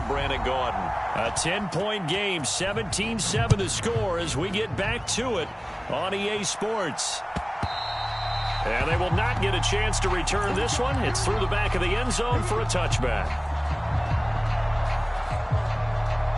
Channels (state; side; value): identical; both; correlation 1.00